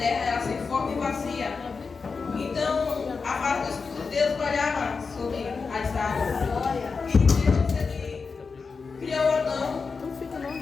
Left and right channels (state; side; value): quieter; right; 4.9 dB